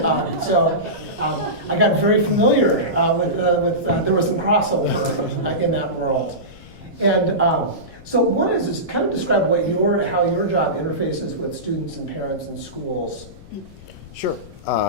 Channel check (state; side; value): noise; left; rumble, 19 dB below the sound